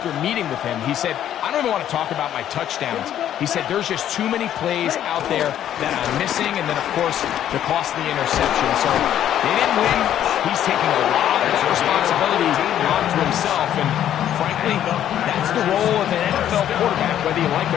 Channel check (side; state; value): right; quieter; 10.9 dB